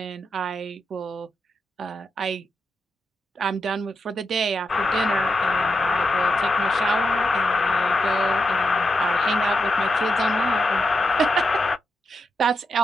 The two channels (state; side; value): normal; both; correlation 0.85